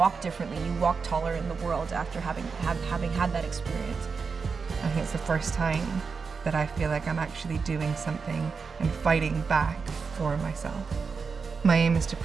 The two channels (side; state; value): left; quieter; 5.2 dB